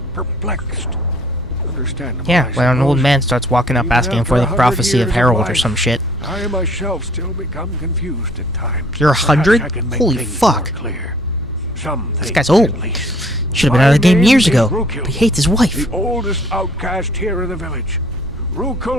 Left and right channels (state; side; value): normal; both; correlation 0.59